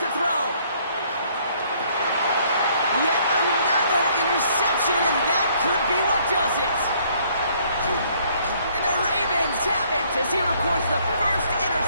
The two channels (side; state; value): both; inverted; correlation -0.64